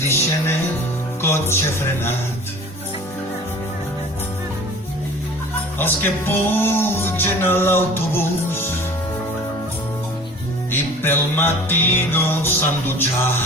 deixen el cotxe frenat, els que pugen a l'autobús i pel matí no s'han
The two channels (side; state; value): both; normal; correlation 0.44